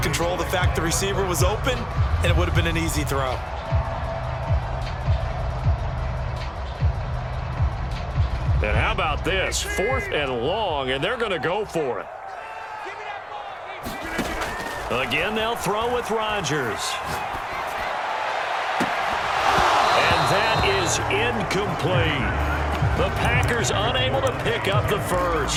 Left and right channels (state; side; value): identical; both; correlation 1.00